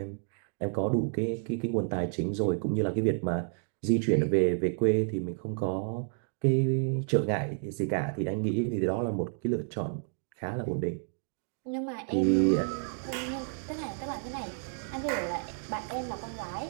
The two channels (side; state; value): left; silent; 57 dB below the other